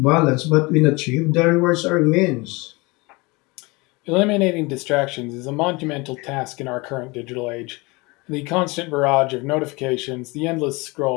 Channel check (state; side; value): quieter; right; 25.3 dB